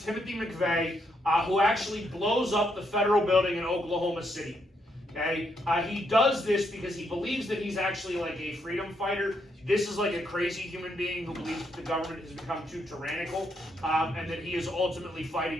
McVeigh, who actually blows up the federal building in Oklahoma City. Okay? He does this because he believes that he's actually like a freedom fighter. This is like a crazy human being who believes that the government has become too tyrannical, and that he is ultimately fighting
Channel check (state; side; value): normal; both; correlation 0.76